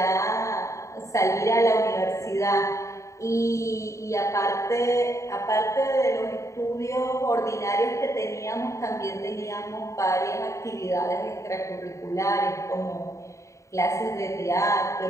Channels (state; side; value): late; right; 0.15 ms